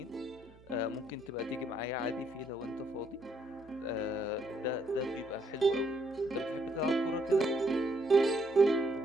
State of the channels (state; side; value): noise; right; hum, 24 dB below the sound